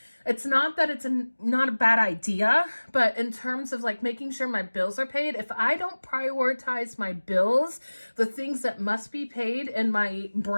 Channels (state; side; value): inverted; both; correlation -1.00